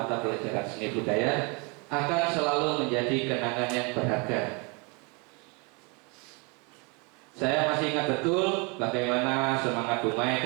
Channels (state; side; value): quieter; left; 31.3 dB